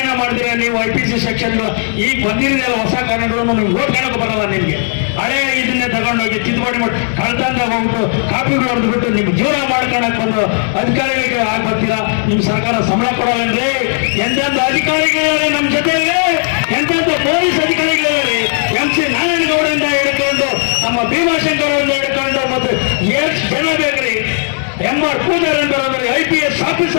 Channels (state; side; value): silent; right; 59 dB below the other